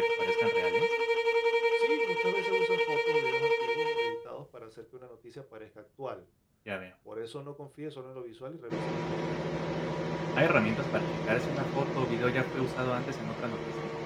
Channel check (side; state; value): both; identical; correlation 1.00